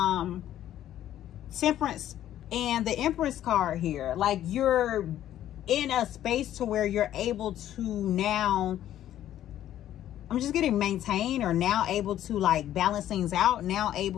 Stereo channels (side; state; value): right; quieter; 12.0 dB